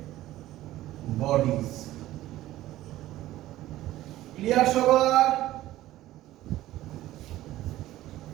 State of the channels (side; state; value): left; quieter; 15.3 dB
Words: বডিজ। ক্লিয়ার সবার?